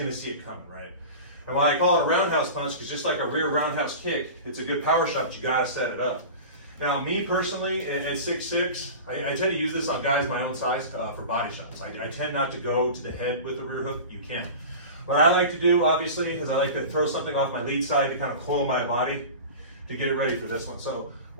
to see it coming, right? And why I call it a roundhouse punch, because just like a rear roundhouse kick, it's a good power shot, but you got to set it up. Now, me personally, at 6'6", I tend to use this on guys my own size for body shots. I tend not to go to the head with the rear hook. You can. What I like to do, obviously, is I like to throw something off my lead side to kind of coil my body to get it ready for this one. So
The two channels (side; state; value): both; inverted; correlation -0.33